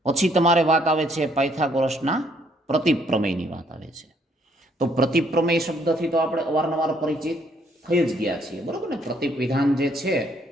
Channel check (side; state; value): both; normal; correlation 0.67